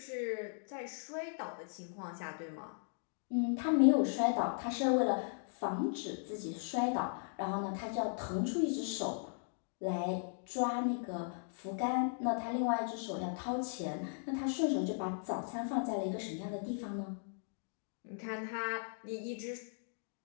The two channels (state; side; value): silent; right; digital silence